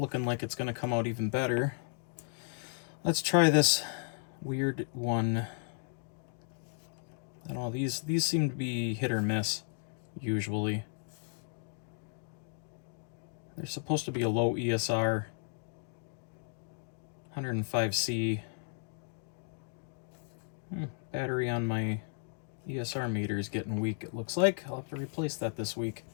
like it's going to come out even better. Let's try this weird one. I don't know, these seem to be hit or miss, usually. They're supposed to be a low ESR, 105C. Battery on my ESR meter is getting weak, it looks like. I'll have to replace that this week.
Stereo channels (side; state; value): right; silent; 55 dB below the other